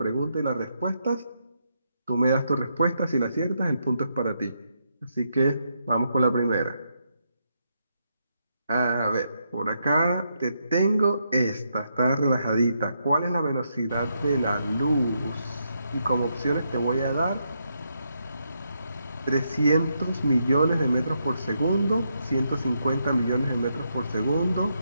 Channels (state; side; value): inverted; both; correlation -0.80